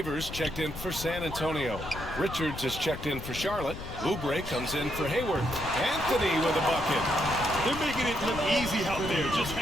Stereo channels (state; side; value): noise; left; rumble, 10 dB below the sound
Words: checked in for San Antonio. Richards is checked in for Charlotte. Oubre comes in for Hayward. Anthony with a bucket. They're making it look easy out there, just